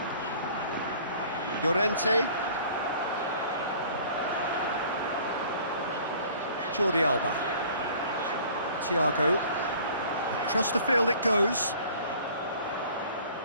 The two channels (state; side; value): inverted; both; correlation -0.50